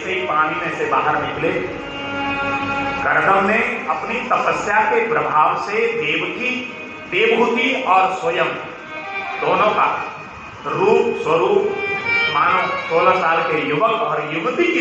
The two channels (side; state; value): both; identical; correlation 1.00